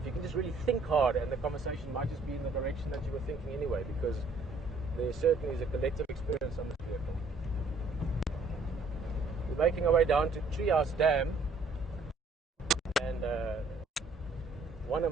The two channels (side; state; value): left; quieter; 3.5 dB